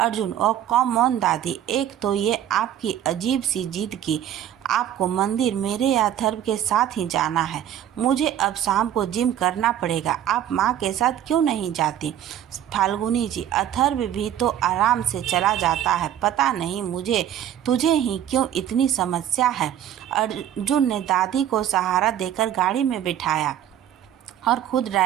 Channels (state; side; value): quieter; left; 10.8 dB